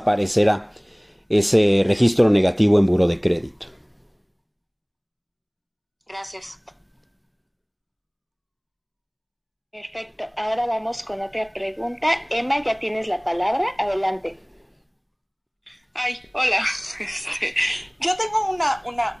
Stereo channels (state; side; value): identical; both; correlation 1.00